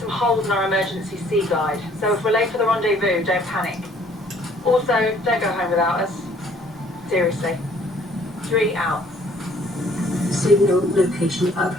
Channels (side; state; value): both; normal; correlation 0.59